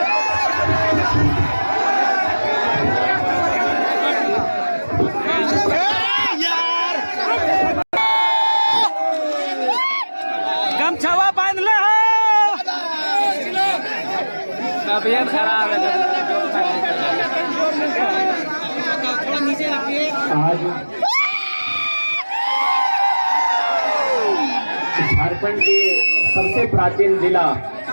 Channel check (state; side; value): inverted; both; correlation -1.00